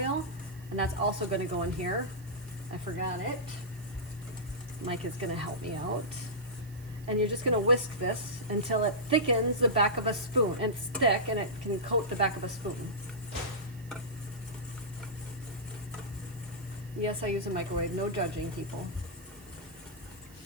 and that's also going to go in here. I forgot it. Micah's going to help me out. And you're just going to whisk this until it thickens the back of a spoon. And it's thick and it can coat the back of a spoon. Yes, I use a microwave. No judging, people.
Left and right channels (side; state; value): right; noise; hiss, 23 dB below the sound